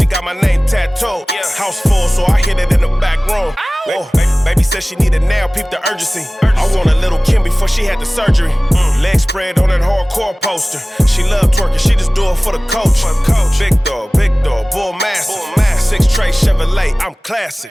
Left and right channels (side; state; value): both; normal; correlation 0.98